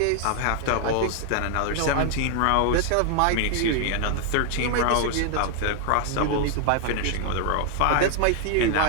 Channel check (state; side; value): different; both; correlation 0.00